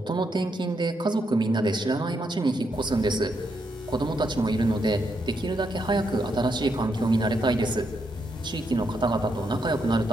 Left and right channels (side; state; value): both; normal; correlation 0.79